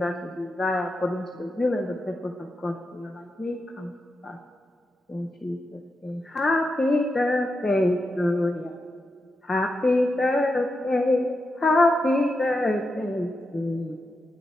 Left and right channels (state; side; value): normal; both; correlation 0.87